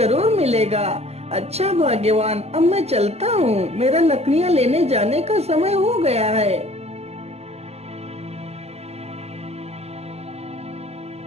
मिलेगा। अच्छा भाग्यवान, अब मैं चलता हूँ, मेरा लकड़ियाँ लेने जाने का समय हो गया है।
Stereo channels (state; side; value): late; left; 0.30 ms